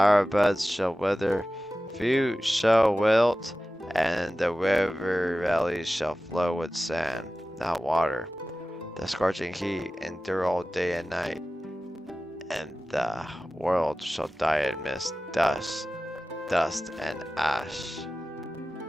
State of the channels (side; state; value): both; normal; correlation 0.95